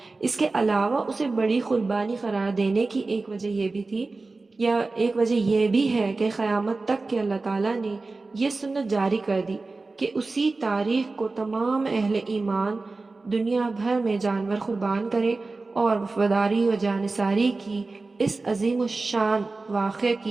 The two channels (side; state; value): left; quieter; 3.6 dB